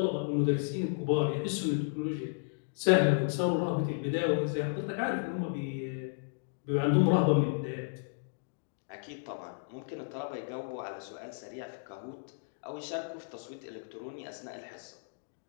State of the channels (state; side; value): silent; right; digital silence